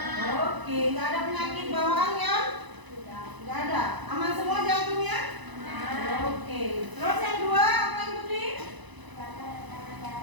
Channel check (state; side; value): late; left; 1.0 ms